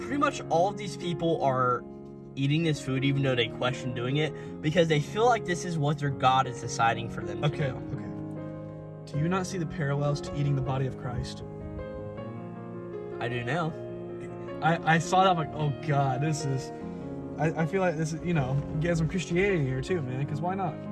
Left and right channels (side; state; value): both; identical; correlation 1.00